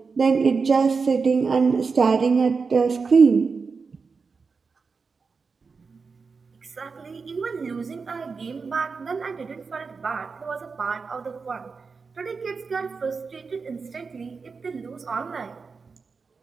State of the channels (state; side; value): quieter; left; 4.9 dB